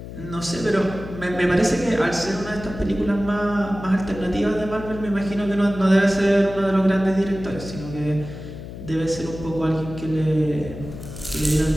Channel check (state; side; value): noise; left; hum, 11 dB below the sound